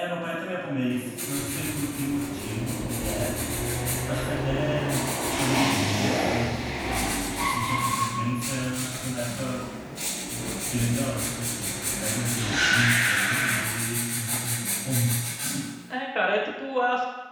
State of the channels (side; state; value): both; identical; correlation 1.00